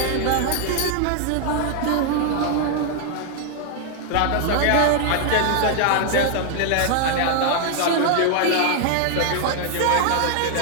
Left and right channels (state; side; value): different; both; correlation 0.00